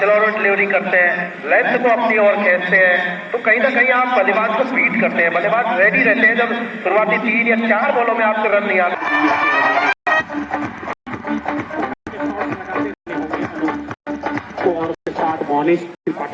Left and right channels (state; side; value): identical; both; correlation 1.00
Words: डिलीवरी करते हैं, लेंथ को अपनी ओर खींचते हैं, तो कहीं ना कहीं आप बल्लेबाज को बीट करते हैं। बल्लेबाज रेडी रहते हैं जब शुरुआती 3 या 4 बॉलों में आपको रन नहीं आते।